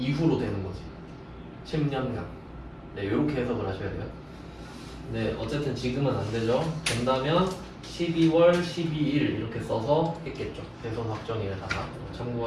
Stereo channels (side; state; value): both; identical; correlation 1.00